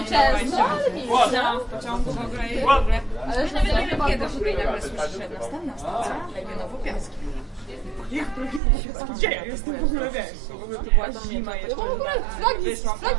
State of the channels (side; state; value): left; drops out; at 8.6 s